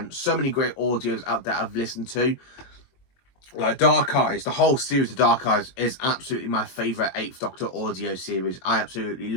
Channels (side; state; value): right; late; 22 ms